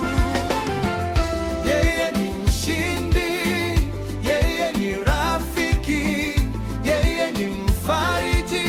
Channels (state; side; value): identical; both; correlation 1.00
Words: Yeye ni mshindi, yeye ni rafiki, yeye ni mfariji